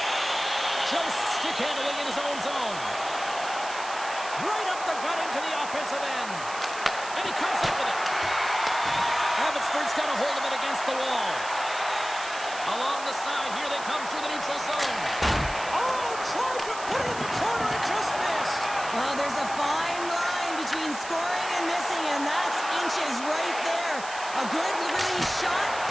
Just stick handling in his own zone. Right up the gut into the offensive end. And he comes up with it. Abbotsford's got a hold of it against the wall. Along the side, here they come through the neutral zone. Oh, tried to put it in the corner and just missed. Well, there's a fine line between scoring and missing, and that's inches right there. A good release shot,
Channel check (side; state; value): right; noise; hiss, 12 dB below the sound